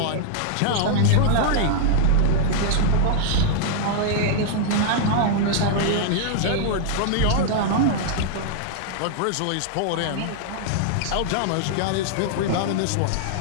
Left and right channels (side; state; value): both; different; correlation -0.01